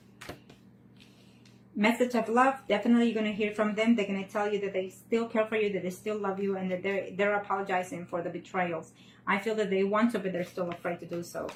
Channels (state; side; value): identical; both; correlation 1.00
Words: Message of love. Definitely you're going to hear from them. They're going to tell you that they still care for you, that they still love you, and that they're apologizing for the betrayals. I feel that they want to, but they're still afraid to do so.